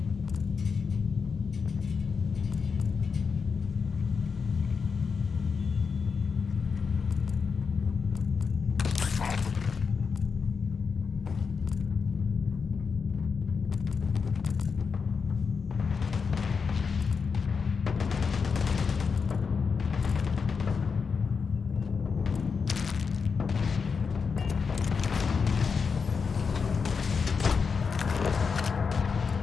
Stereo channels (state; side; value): quieter; right; 5.5 dB